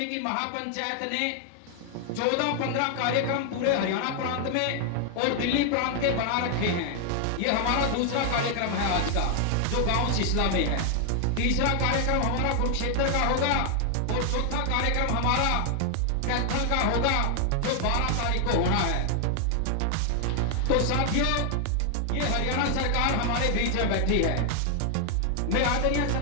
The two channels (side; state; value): both; different; correlation 0.00